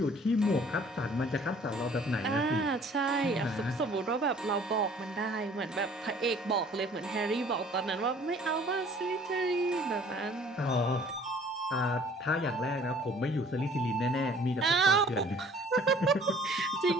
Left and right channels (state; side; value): normal; both; correlation 0.54